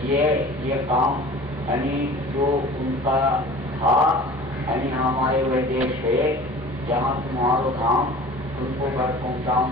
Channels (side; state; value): both; normal; correlation 0.42